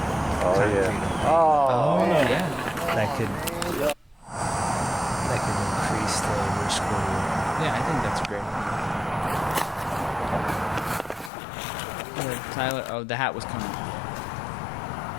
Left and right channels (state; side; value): drops out; right; at 11.3 s